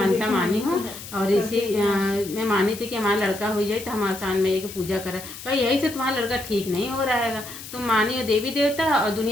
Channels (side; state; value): left; noise; hiss, 13 dB below the sound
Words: मानी हूँ, और इसी मैं मानी थी कि हमारा लड़का हो जाए तो हम आसान मैया की पूजा करें। कहा यही से तुम्हारा लड़का ठीक नहीं हो रहा है, तुम मानी हो देवी देवता और